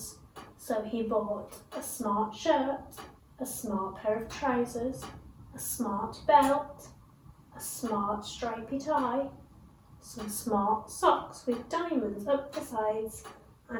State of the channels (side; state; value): both; identical; correlation 1.00